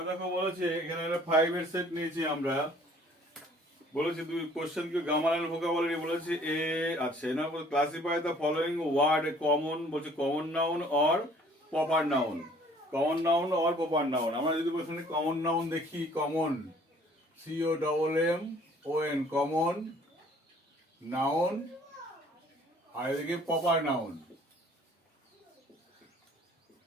দেখো বলেছে এখানে একটা 5 এর সেট নিয়েছি আমরা। বলেছে দুই কোশ্চেন কি গ্রামার এন্ড ভোকাবুলারি বলেছে এ আচ্ছা না classify the following word common বলছে common noun or proper noun. Common noun or proper noun. আমরা যদি প্রথমে কমন নাউন দেখি কমন COMMON কমন নাউন আর এদিকে প্রপার নাউন।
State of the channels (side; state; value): both; normal; correlation 0.56